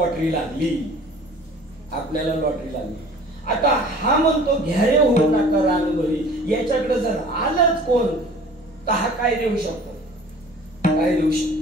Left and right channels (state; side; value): normal; both; correlation 0.47